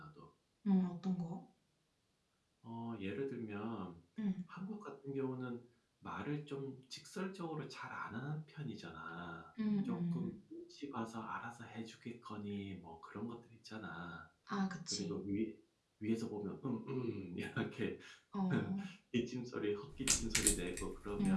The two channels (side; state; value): both; identical; correlation 1.00